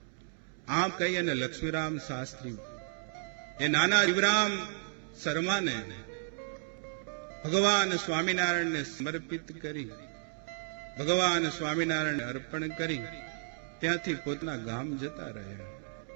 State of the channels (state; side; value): silent; left; digital silence